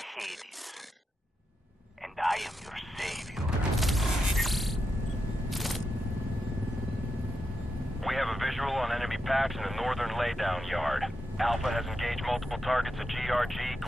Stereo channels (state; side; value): normal; both; correlation 0.86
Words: and I am your savior. We have a visual on enemy packs in the northern laydown yard. Alpha has engaged multiple targets at GRG